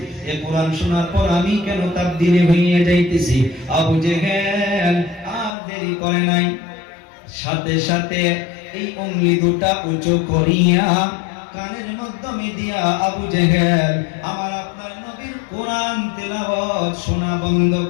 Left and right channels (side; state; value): right; drops out; at 5.6 s